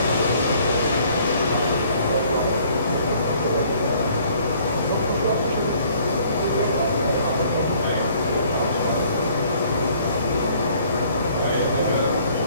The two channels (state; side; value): inverted; both; correlation -0.59